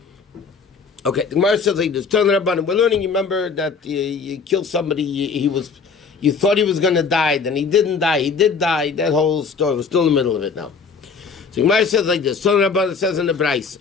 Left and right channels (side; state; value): right; quieter; 5.3 dB